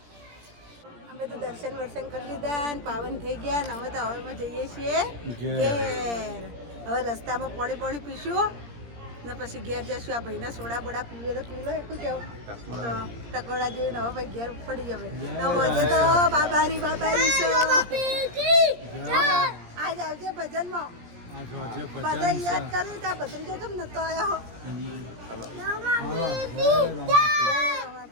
અમે તો દર્શન વર્શન કરી લીધા ને પાવન થઈ ગયા ને હવે તો હવેમાં જઈએ છીએ ઘેર. હવે રસ્તામાં પાણી પીશું ને પછી ઘેર જશું. આ ભાઈના સોડા બોડા પીવે તો પી લો. એટલું કેવું તો ટકોડા જોઈને હવે ભાઈ ઘેર પડી જવે તો હોજે તો બાબારી આજ આવજે ભજનમાં. બધા યાદ કર્યું ત્યાં ભત્રીજો કેમ નતો આવ્યો?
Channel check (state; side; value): late; left; 17 ms